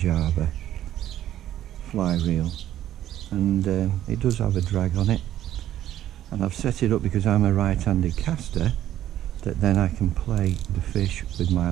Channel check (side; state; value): left; quieter; 12.3 dB